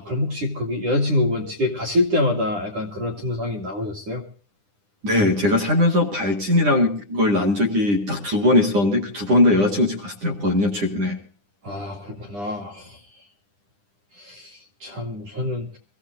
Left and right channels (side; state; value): left; late; 9.9 ms